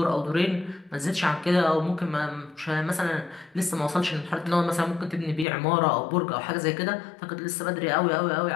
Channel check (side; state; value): right; drops out; at 5.5 s